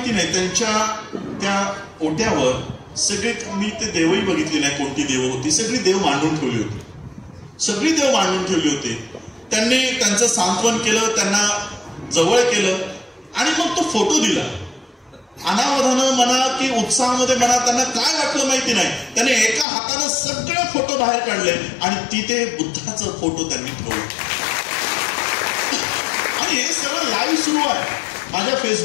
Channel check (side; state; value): right; drops out; at 19.7 s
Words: नाही, त्यांच्या त्या ओट्यावर सगळे, मी ते देवही बघितली नाही कोणती देव होती, सगळी देव मांडून ठेवली होती. त्यांनी त्यांचं सांत्वन केलं, त्यांना जवळ केलं आणि मग तो फोटो दिला. अनावधानं म्हणा की उत्साहामध्ये म्हणा, त्यांना काय वाटलं माहिती नाही, त्यांनी एका हाताने सगळे फोटो बाहेर काढले आणि तिथे बुद्धाचा फोटो त्यांनी ठेवला. आणि हे सगळं लाईव्ह सुरू आहे, माझ्या